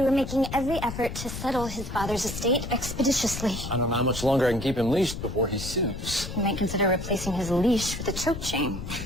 we're making every effort to settle his father's estate expeditiously. I don't know how much longer I can keep him leashed before he sues. We might consider replacing his leash with a choke chain.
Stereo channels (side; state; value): left; noise; rumble, 8 dB below the sound